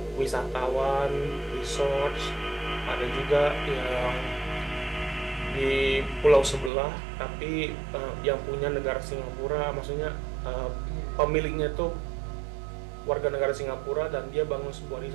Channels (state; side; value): drops out; left; at 6.7 s